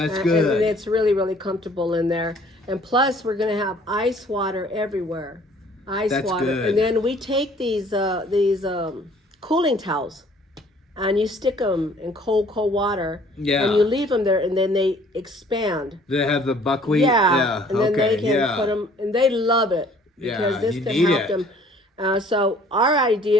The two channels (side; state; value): both; normal; correlation 0.56